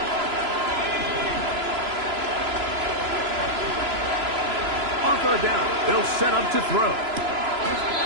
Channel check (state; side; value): late; left; 3.0 ms